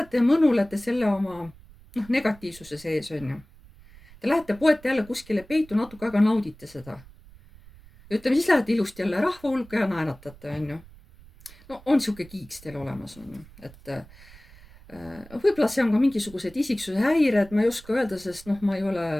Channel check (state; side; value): noise; right; rumble, 22 dB below the sound